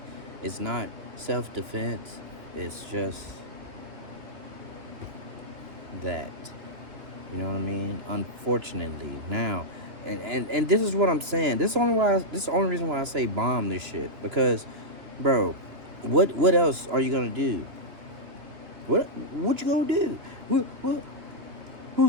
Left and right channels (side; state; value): left; late; 3.1 ms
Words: It's not self-defense. It's just that. You know what I mean? Unfortunately, now, and this is what I'm saying. This is the only reason why I say bomb this shit. Because, bro, what else are you gonna do? What you gonna do?